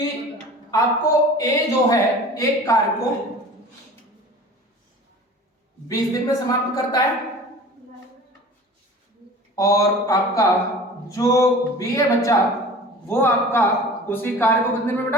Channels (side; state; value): both; normal; correlation 0.41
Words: आपको ए जो है एक कार्य को 20 दिन में समाप्त करता है और आपका जो बी है बच्चा वो आपका उसी कार्य को कितने दिन में